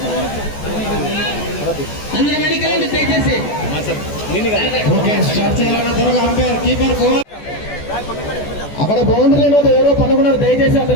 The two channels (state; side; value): late; right; 14 ms